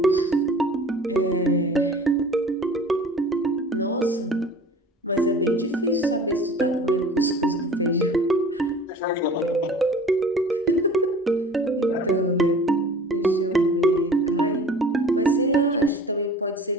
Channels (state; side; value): normal; both; correlation 0.44